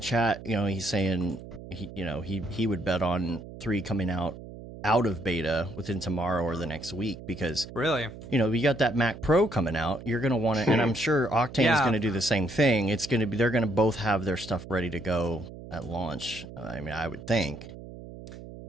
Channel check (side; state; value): right; noise; hum, 14 dB below the sound